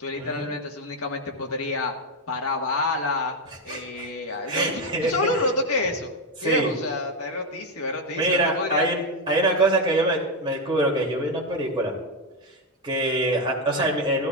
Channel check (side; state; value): both; normal; correlation 0.06